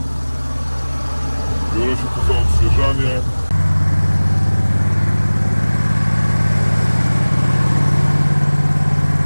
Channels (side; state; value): both; inverted; correlation -1.00